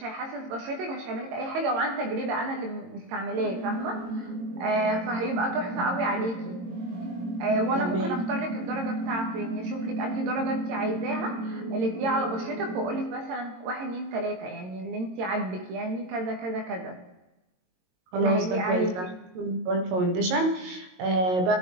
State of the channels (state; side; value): late; left; 22 ms